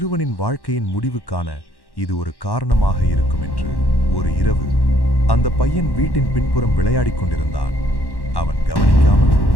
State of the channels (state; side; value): late; right; 1.1 ms